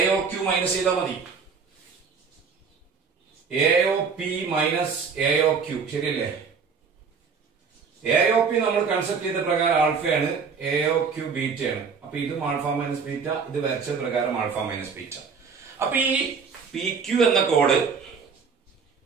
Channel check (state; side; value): quieter; left; 5.7 dB